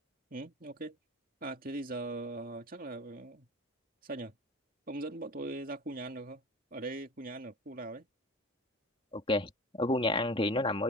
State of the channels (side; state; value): both; normal; correlation 0.35